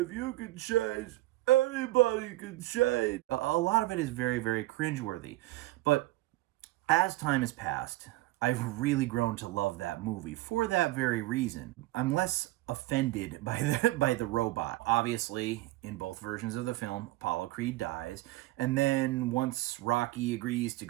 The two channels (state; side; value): quieter; left; 18.4 dB